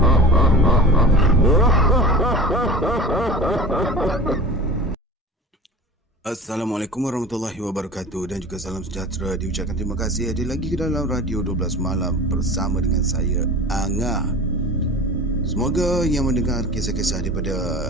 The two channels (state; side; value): normal; both; correlation 0.37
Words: Assalamualaikum warahmatullahi wabarakatuh dan juga salam sejahtera. Diucapkan terima kasih hadir lagi ke dalam Radio 12 Malam bersama dengan saya, Anga. Semoga yang mendengar kisah-kisah daripada